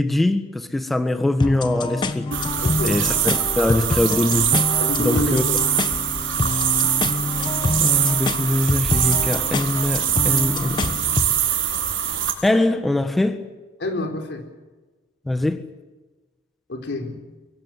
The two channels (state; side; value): normal; both; correlation 0.56